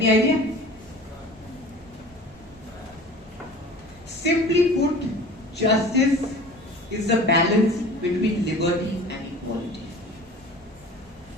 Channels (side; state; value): both; normal; correlation 0.42